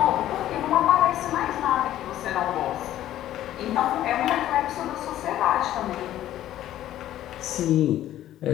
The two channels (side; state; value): right; quieter; 12.9 dB